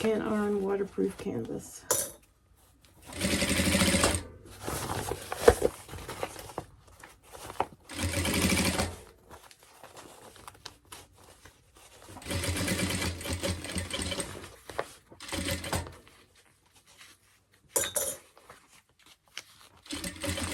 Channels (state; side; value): identical; both; correlation 1.00